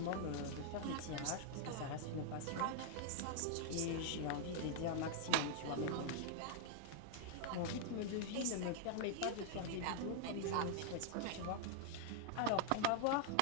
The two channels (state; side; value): different; both; correlation 0.00